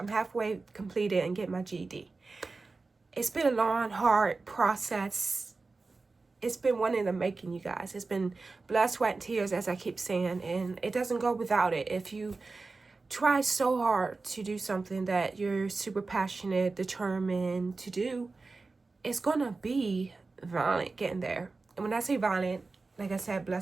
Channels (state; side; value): quieter; left; 3.8 dB